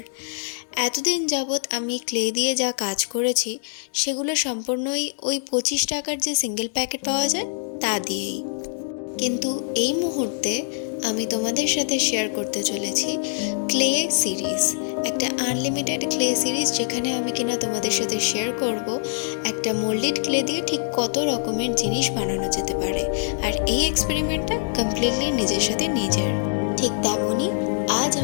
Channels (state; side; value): silent; right; digital silence